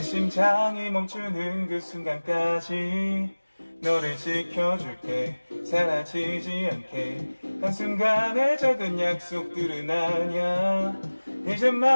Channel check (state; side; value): inverted; both; correlation -1.00